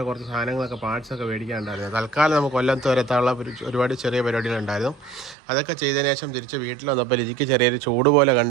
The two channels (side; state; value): left; drops out; at 5.4 s